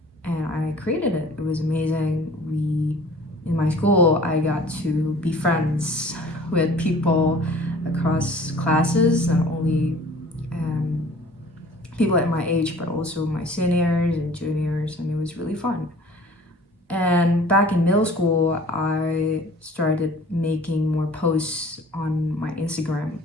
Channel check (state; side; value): normal; both; correlation 0.48